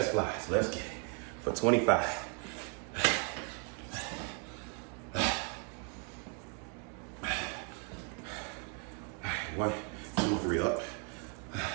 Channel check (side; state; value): left; quieter; 39.3 dB